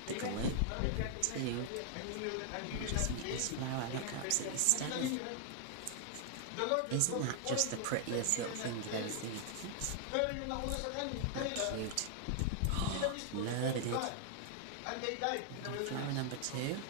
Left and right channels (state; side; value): different; both; correlation 0.00